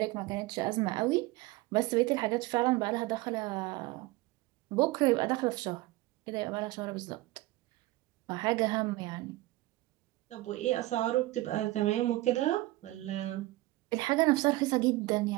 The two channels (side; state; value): left; quieter; 19.1 dB